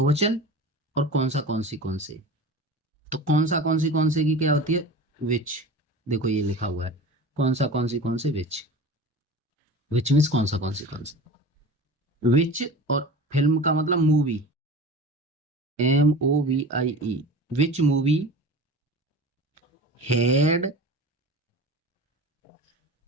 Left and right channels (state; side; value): normal; both; correlation 0.35